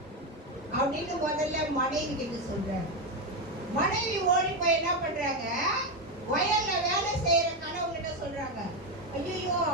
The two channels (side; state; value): both; normal; correlation 0.10